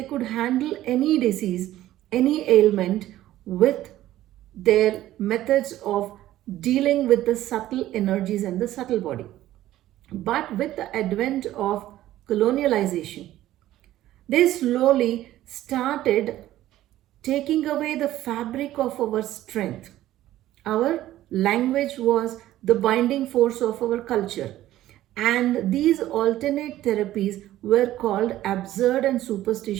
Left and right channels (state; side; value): quieter; left; 14.2 dB